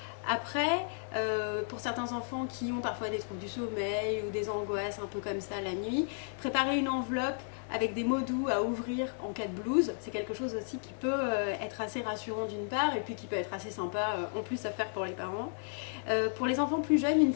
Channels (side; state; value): right; silent; digital silence